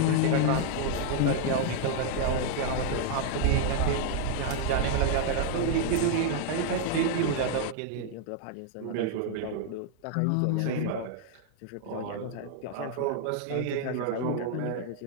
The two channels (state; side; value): different; both; correlation 0.00